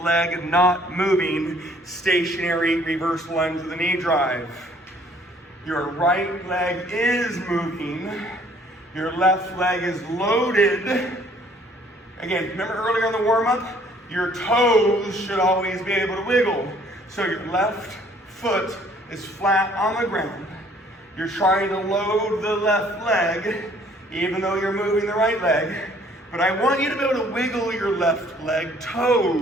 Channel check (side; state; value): both; normal; correlation 0.59